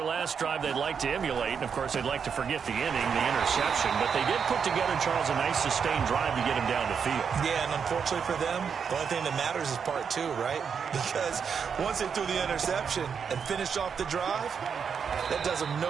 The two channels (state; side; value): quieter; left; 6.6 dB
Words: last drive they'd like to emulate. And, of course, they'd like to forget the inning, the interception. But they did put together, Charles, a nice sustained drive to get him down the field. Yeah, and unfortunately for them, the only thing that matters is part 2, right? Because once they threw the interception and finished off the drive, that does them